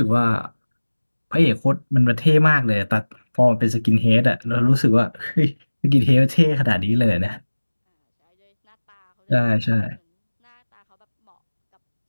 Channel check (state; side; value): inverted; both; correlation -1.00